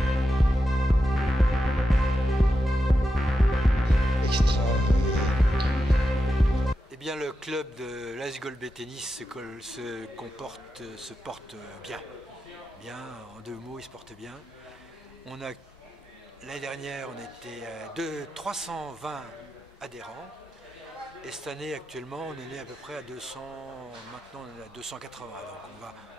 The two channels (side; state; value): both; normal; correlation 0.89